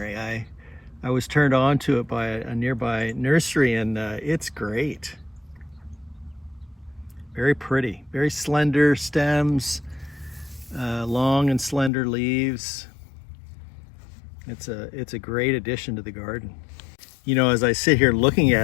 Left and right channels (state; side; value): drops out; right; at 11.9 s